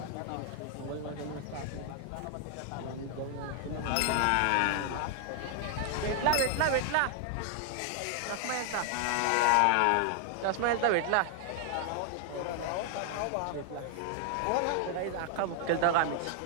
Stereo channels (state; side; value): different; both; correlation 0.00